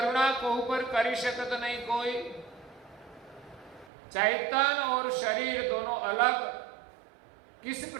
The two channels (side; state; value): left; drops out; at 3.9 s